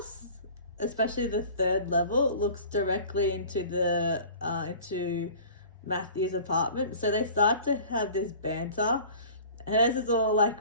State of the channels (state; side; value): inverted; both; correlation -0.43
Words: especially the 3rd level, looks directly into into Matthew's apartment. So they start to have this banter. Hers is all